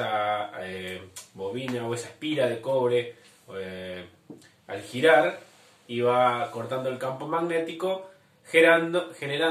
bobina o esa espira de cobre al girar iba cortando el campo magnético,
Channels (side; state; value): both; identical; correlation 1.00